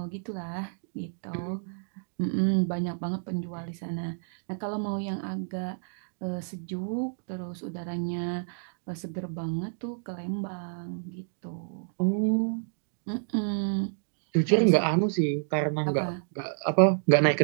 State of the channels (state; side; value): silent; left; digital silence